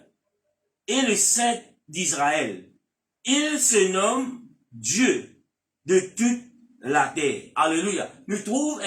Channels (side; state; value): both; identical; correlation 1.00